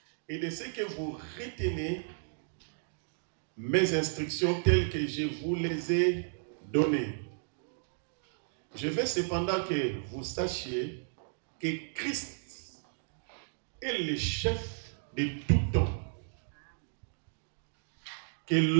et de ce que vous retenez mes instructions telles que je vous les ai données. Je veux cependant que vous sachiez que Christ est le chef de tout homme, que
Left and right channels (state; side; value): silent; left; digital silence